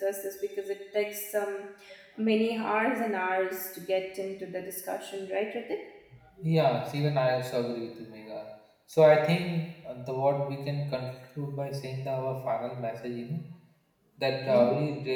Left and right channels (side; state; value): both; identical; correlation 1.00